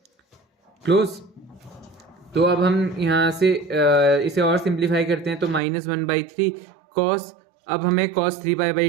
क्लोज। तो अब हम यहाँ से इसे और सिंप्लीफाई करते हैं तो -1/3 cos, अब हमें cos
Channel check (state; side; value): drops out; left; at 5.6 s